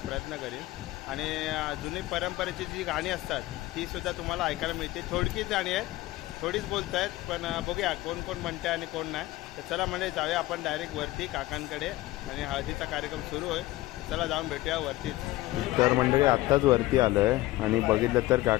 प्रयत्न करीन. आणि जुनी परंपरेची जी गाणी असतात तीसुद्धा तुम्हाला ऐकायला मिळते. थोडकीच गाणी आहेत, थोडीच बोलत आहेत, पण बघूया कोण कोण म्हणते आणि कोण नाही. तर चला म्हणजे जाऊया आपण डायरेक्ट वरती काकांकडे, आणि हळदीचा कार्यक्रम सुरू होईल. चला जाऊन भेटूया वरतीच. तर मंडळी, आत्ताच वरती आलो आहे आणि बघितलं तर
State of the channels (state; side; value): quieter; right; 17.8 dB